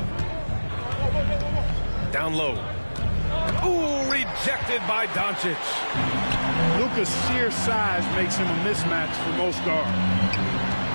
Down low. Ooh, rejected by Doncic. Luka's sheer size makes him a mismatch for most guards.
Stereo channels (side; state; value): both; inverted; correlation -1.00